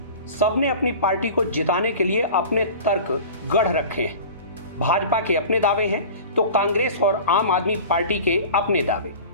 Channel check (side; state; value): both; inverted; correlation -0.38